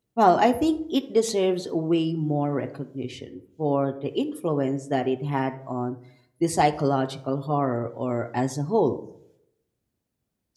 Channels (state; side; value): identical; both; correlation 1.00